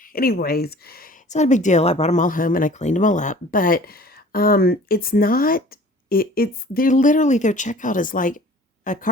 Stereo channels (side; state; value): both; normal; correlation 0.47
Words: anyways, it's not a big deal. I brought them all home and I cleaned them all up. But it's not, they're literally, their checkout is like a